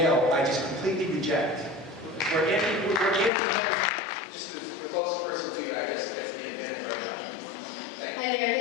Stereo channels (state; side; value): drops out; right; at 3.3 s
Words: I just completely reject. We're anti-men. Just the closest person to you, I guess, gets the advantage right now. Thank you. Hi there,